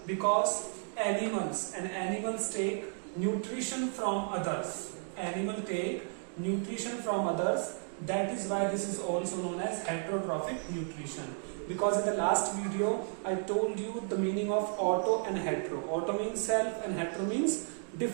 Because animals take nutrition from others. Animal take nutrition from others. That is why this is also known as heterotrophic nutrition. Because in the last video I told you the meaning of auto and hetero. Auto means self and hetero means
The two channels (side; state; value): left; silent; 56 dB below the other